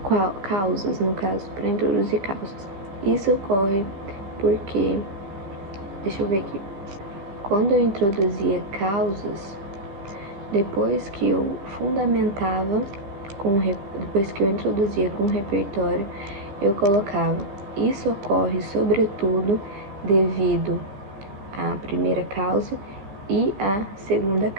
causas, no caso, para introduzir causas. Isso ocorre porque, deixa eu ver aqui, quando eu introduzia causas, depois que eu fundamentava, depois que eu introduzia com o repertório, eu colocava, isso ocorre sobretudo devido à primeira causa e à segunda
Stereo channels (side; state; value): left; late; 15 ms